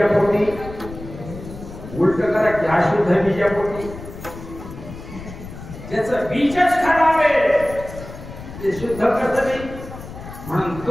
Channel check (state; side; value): noise; left; rumble, 13 dB below the sound